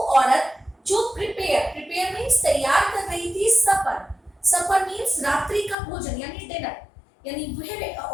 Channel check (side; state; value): right; drops out; at 5.8 s